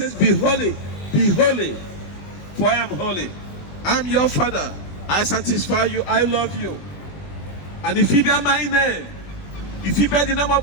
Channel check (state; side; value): late; right; 20 ms